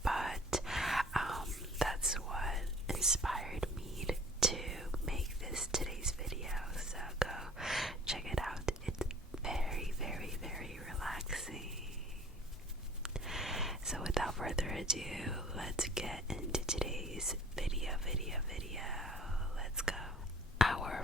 but that's what inspired me to make this today's video, so go check it out. It's very, very, very relaxing. So without further ado, let's get into today's video. Let's go. Our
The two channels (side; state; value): both; normal; correlation 0.44